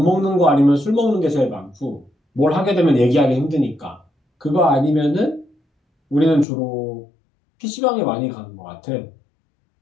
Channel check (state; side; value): drops out; right; at 6.5 s